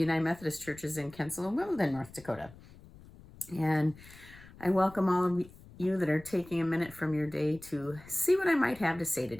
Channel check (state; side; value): noise; left; rumble, 21 dB below the sound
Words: Methodist Churches in Kensal and Wimbledon, North Dakota. And I welcome all of you that are taking a minute from your day to see what I might have to say